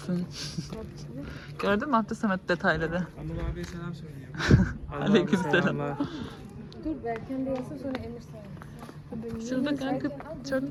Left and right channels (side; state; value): both; identical; correlation 1.00